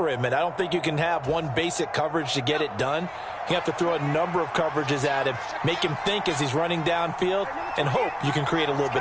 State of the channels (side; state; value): both; identical; correlation 1.00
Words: him. And I don't think you can have one basic coverage to get it done. You have to throw a number of coverages at him, make him think as he's running downfield, and hope you can create a little